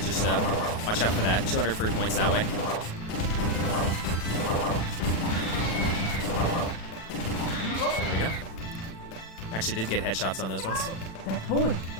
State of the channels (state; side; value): late; right; 36 ms